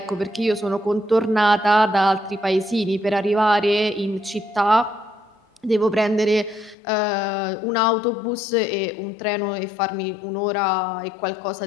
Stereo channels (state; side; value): drops out; right; at 6.8 s